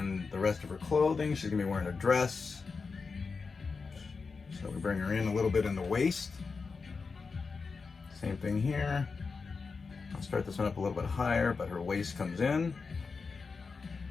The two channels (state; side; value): quieter; right; 4.7 dB